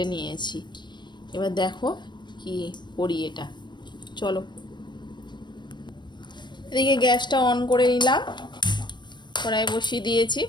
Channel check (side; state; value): right; late; 0.22 ms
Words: নিয়েছি। এবার দেখো কি করি এটা, চলো। এদিকে গ্যাসটা অন করে নিলাম, কড়াই বসিয়ে দিয়েছি।